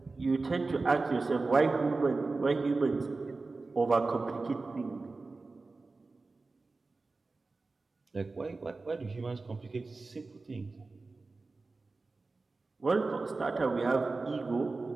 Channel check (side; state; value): left; quieter; 3.7 dB